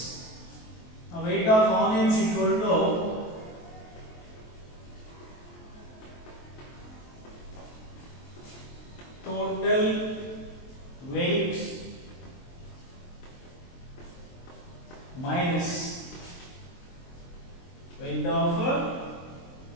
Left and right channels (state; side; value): late; right; 23 ms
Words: Now weight of onions equal to total weight minus weight of